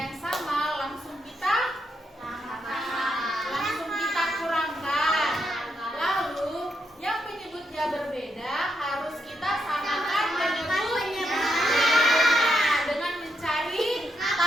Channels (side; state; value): both; normal; correlation 0.81